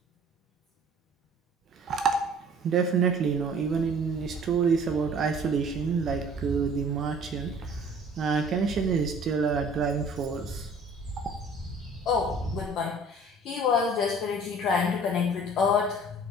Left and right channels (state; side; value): normal; both; correlation 0.50